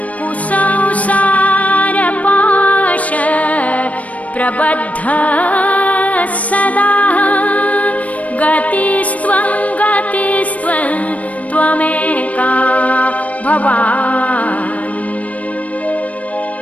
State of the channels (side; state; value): right; late; 0.068 ms